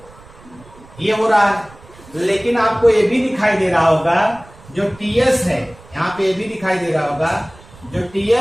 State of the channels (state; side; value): noise; right; rumble, 23 dB below the sound